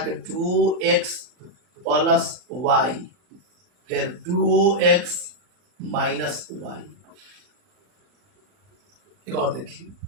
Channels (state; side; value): late; left; 40 ms